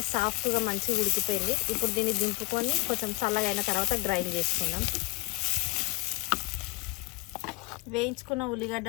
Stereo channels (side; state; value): right; quieter; 24.1 dB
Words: సాఫ్ట్గా మంచిగా ఉడికిపోయింది. ఇప్పుడు దీన్ని దింపుకొని కొంచెం చల్లగా అయిన తర్వాత గ్రైండ్ చేసుకుందాం. వేయించుకున్న